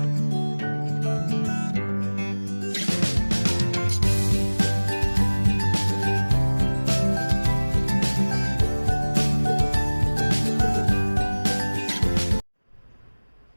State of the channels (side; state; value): both; inverted; correlation -1.00